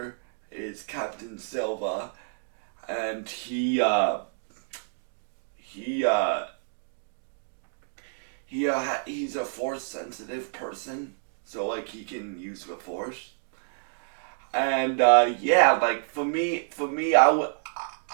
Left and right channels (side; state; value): left; silent; digital silence